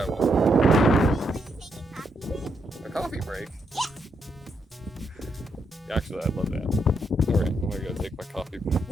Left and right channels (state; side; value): normal; both; correlation 0.79